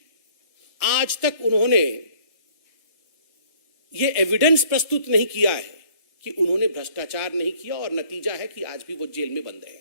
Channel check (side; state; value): right; late; 1.6 ms